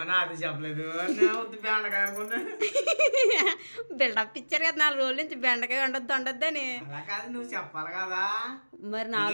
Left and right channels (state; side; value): inverted; both; correlation -1.00